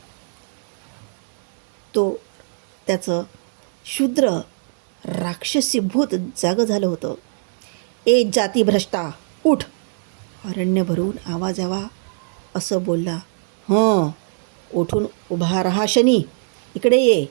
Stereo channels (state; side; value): silent; left; digital silence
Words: त्याचं शूद्र राक्षसी भूत जागं झालं होतं. ए जाती भ्रष्टा, उठ! अरण्य भरून आवाज यावा असं बोलला. उठून उभा रहा शनी, इकडे ये